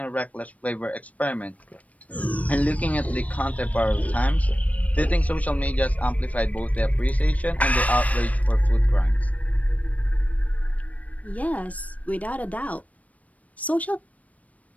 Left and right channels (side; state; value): right; late; 0.069 ms